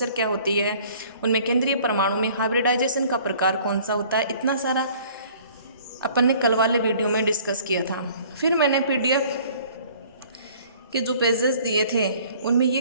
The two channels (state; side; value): inverted; both; correlation -0.53